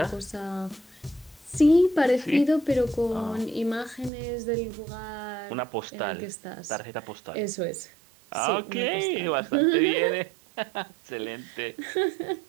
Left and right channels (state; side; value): drops out; left; at 4.1 s